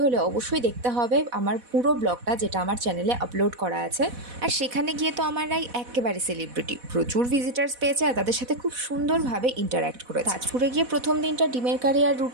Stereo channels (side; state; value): left; late; 4.1 ms